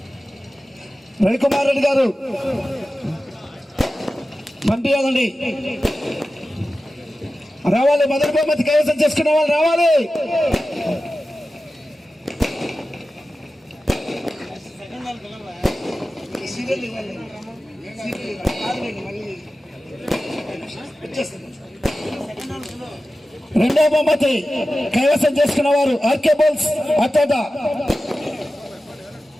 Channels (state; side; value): normal; both; correlation 0.94